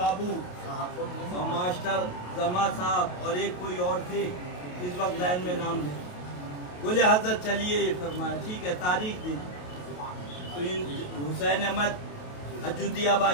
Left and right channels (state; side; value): late; right; 28 ms